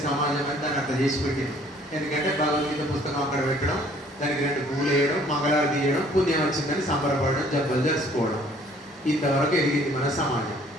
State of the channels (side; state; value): both; normal; correlation 0.58